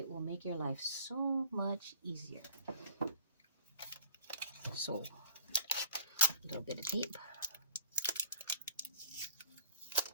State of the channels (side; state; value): both; inverted; correlation -0.47